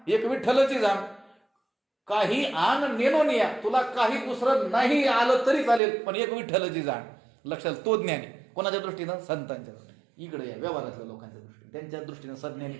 एक विठ्ठलची जाण. काही आण नेनोनिया, तुला काही दुसरं नाही आलं तरी चालेल, पण एक विठ्ठलची जाण. लक्षात, तो ज्ञानी. कोणाच्या दृष्टीनं? संतांच्या दृष्टीने. इकडे या व्यवहारातल्या लोकांच्या दृष्टीने, त्यांच्या दृष्टीने सज्ञानी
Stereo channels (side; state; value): left; drops out; at 5.8 s